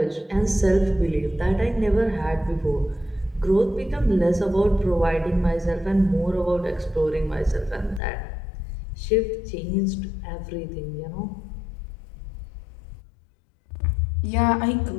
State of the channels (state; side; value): drops out; right; at 8.0 s